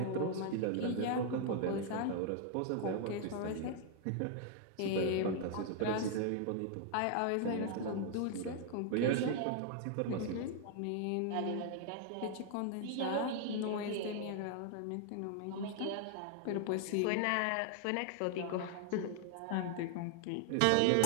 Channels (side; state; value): both; different; correlation 0.00